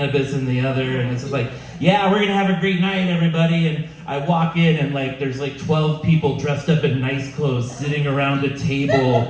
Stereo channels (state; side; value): identical; both; correlation 1.00